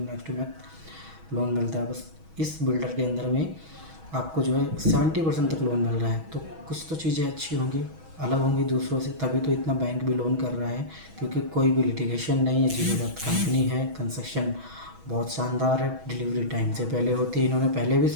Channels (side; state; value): left; late; 6.2 ms